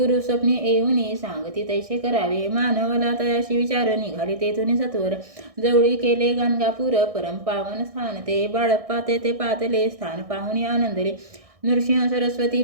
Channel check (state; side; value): late; left; 1.6 ms